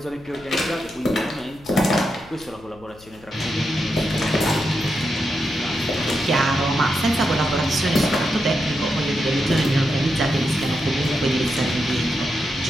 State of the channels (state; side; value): noise; left; hum, 23 dB below the sound